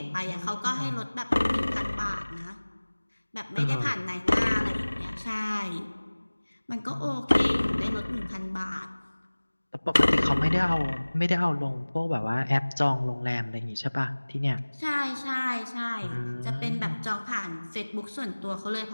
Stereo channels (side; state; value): both; inverted; correlation -1.00